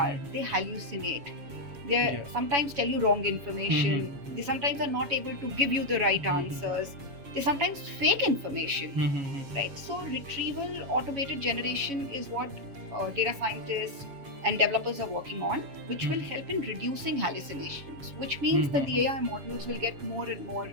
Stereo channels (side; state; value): left; late; 7.1 ms